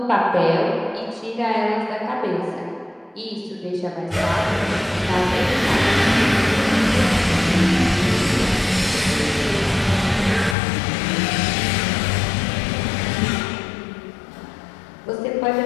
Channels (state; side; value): drops out; right; at 10.6 s